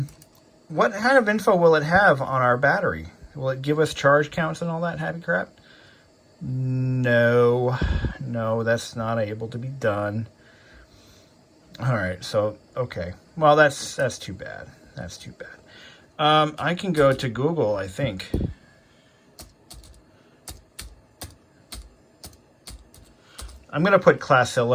kind of info will it have on our battery? Will it give us charge counts and all that happy crap? No, that's not able to be done. All right, so, okay. Well, that's too bad. That's too bad. I can go to Google, I think. I'm going to put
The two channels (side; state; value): both; identical; correlation 1.00